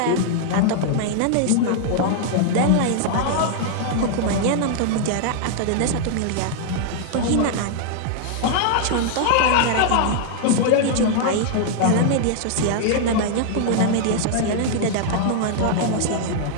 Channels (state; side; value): different; both; correlation -0.01